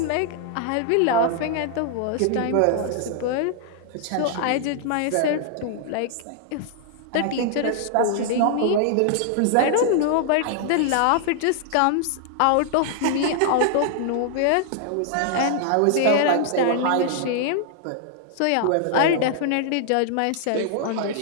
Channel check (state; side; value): different; both; correlation -0.01